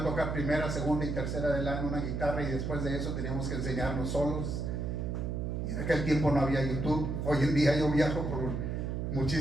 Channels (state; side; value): noise; right; hum, 2 dB below the sound